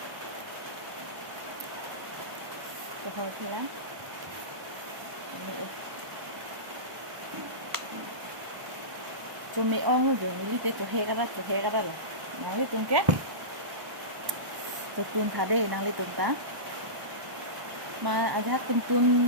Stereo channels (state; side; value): late; left; 1.1 ms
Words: Thôi thì lắm cho mẹ ông rồi mình đi tới chỗ he cái đó là năng đi tung kết cho tuôn thà đây năng đi tung ta mà aja